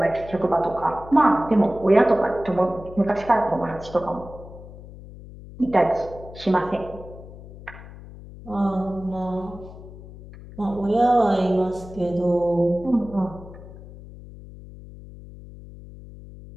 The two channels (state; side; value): noise; left; hum, 16 dB below the sound